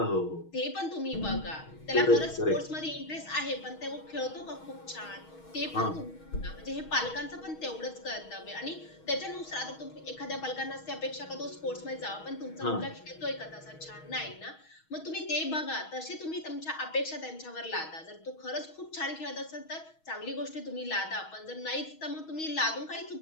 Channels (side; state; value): right; late; 6.3 ms